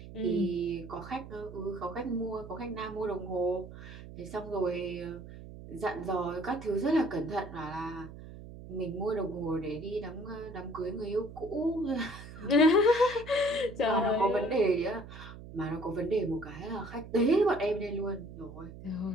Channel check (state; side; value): noise; right; hum, 14 dB below the sound